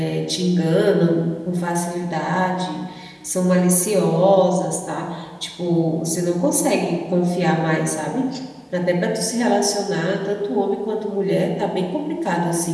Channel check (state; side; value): identical; both; correlation 1.00